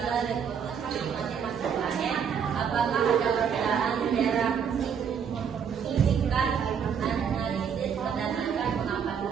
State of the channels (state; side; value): quieter; left; 7.3 dB